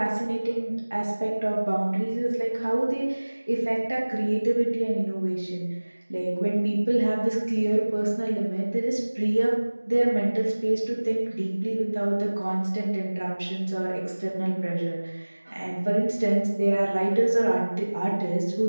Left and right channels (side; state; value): both; inverted; correlation -1.00